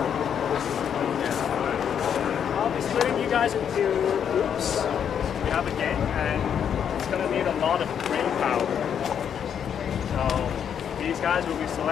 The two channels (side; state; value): right; quieter; 8.3 dB